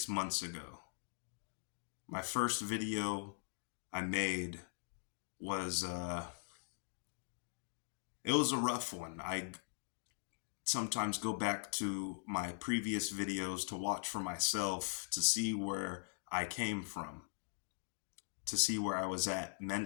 months ago. My first video I made was, it was a rough one. I sometimes go back to my previous videos to watch for myself to see where I came from, to see where I was at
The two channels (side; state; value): right; silent; digital silence